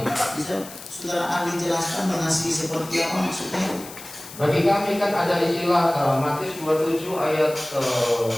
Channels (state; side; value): noise; left; hiss, 15 dB below the sound